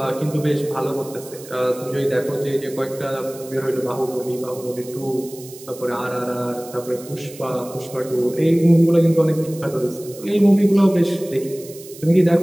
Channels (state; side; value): noise; right; hiss, 18 dB below the sound